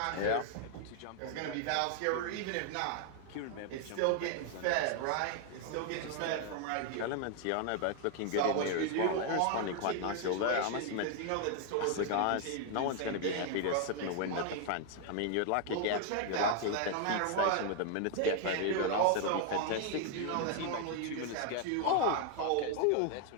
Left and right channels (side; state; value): both; different; correlation 0.00